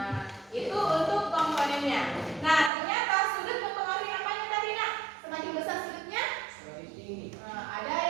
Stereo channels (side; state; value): left; drops out; at 2.7 s